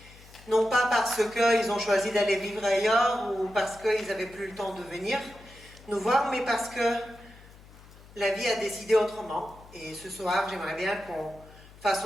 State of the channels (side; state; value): left; noise; hum, 22 dB below the sound